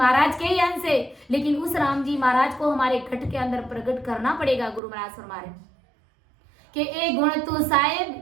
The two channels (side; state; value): left; drops out; at 4.8 s